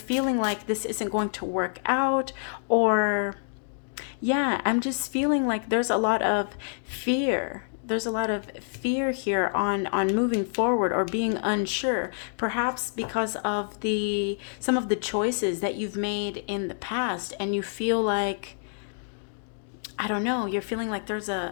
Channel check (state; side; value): silent; right; digital silence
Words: like this isn't going to work out, or yeah, I'm just feeling like there's a lot of fear. There's a lot of fear here on moving forward or being unsure, perhaps because of some of the choices that you've made in the past, and you feel like, I don't know, you're feeling like there's